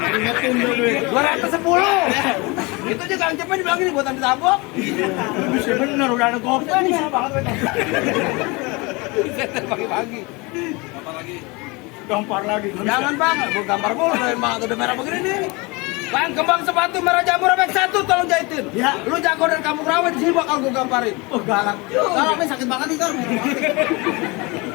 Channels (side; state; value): right; quieter; 26.3 dB